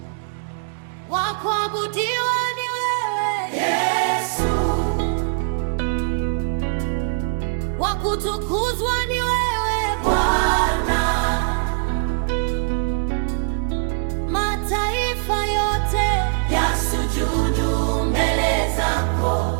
Wa kuabudiwa ni wewe Yesu, wa kutukuzwa ni wewe Bwana. Mataifa yote yasujudu mbele zako,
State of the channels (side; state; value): left; silent; digital silence